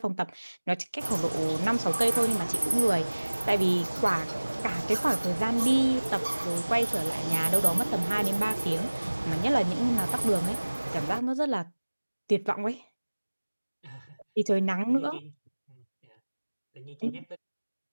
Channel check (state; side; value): inverted; both; correlation -1.00